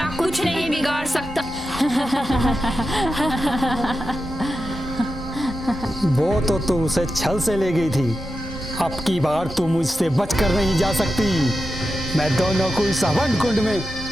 कुछ नहीं बिगाड़ सकता। वो तो तू उसे छल से ले गई थी, अब की बार तू मुझसे बचकर नहीं जा सकती। मैं दोनों को इस हवन कुंड में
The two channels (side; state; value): both; normal; correlation 0.90